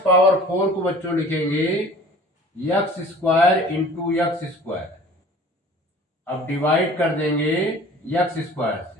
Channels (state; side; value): normal; both; correlation 0.46